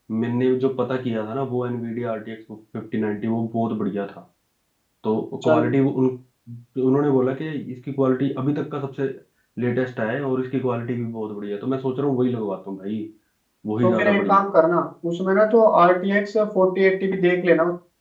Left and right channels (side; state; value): both; identical; correlation 1.00